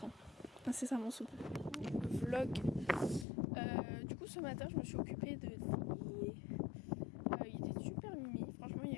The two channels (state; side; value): drops out; right; at 3.2 s